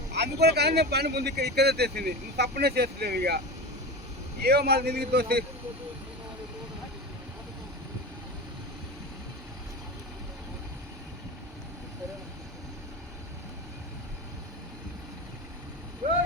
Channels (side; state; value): both; normal; correlation 0.26